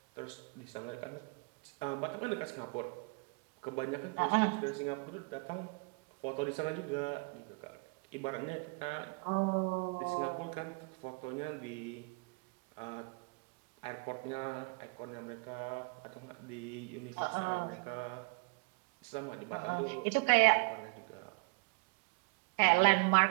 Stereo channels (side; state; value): left; quieter; 32.4 dB